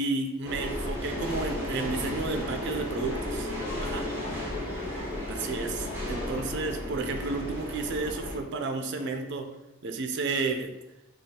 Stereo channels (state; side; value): normal; both; correlation 0.34